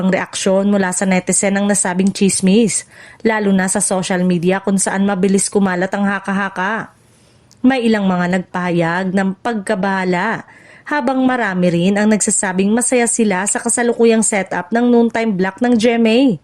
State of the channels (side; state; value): both; identical; correlation 1.00